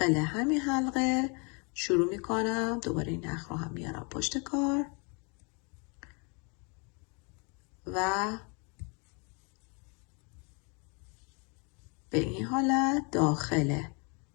همین حلقه شروع میکنم. دوباره این نخ رو هم میارم پشت کار و به این حالت داخل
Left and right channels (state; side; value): quieter; right; 33.7 dB